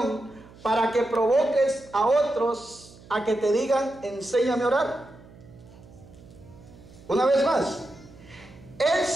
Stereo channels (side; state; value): right; noise; hum, 22 dB below the sound